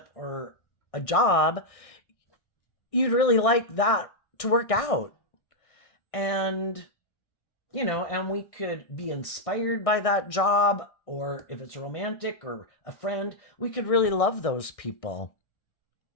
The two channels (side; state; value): right; late; 1.6 ms